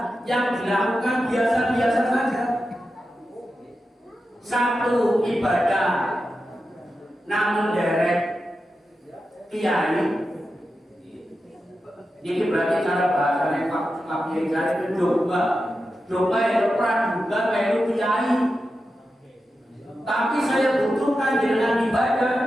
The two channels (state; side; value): normal; both; correlation 0.90